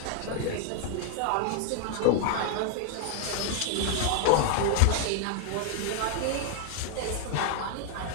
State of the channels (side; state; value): both; different; correlation 0.00